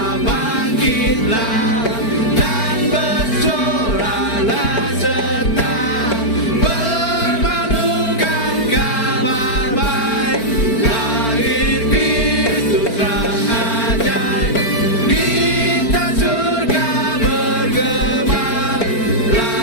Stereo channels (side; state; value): right; late; 4.4 ms